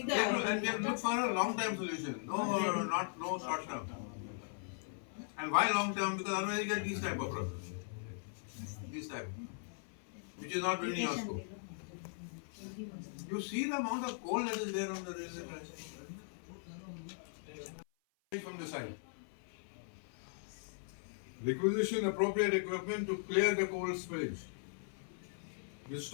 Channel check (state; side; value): silent; right; 52 dB below the other